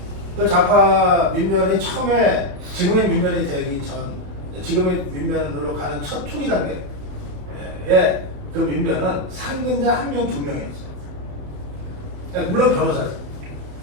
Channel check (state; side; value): late; left; 27 ms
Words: 그 좌파 민변이 처음에 지금의 민변이 되기 전, 지금의 민변으로 가는 첫 초기 단계에 그 민변은 상근자 1명, 2명이었어요. 물론 변호사예요.